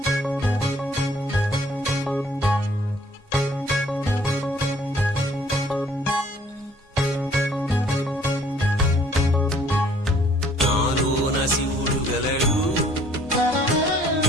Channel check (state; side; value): normal; both; correlation 0.59